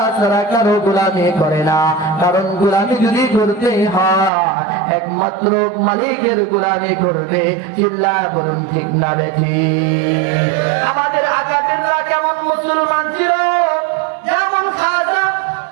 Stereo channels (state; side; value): drops out; left; at 4.3 s